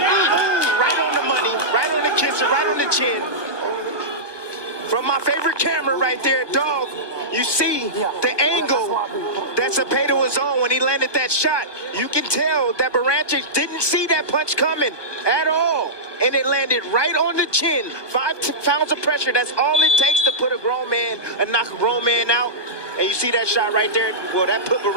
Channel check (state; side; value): late; right; 1.2 ms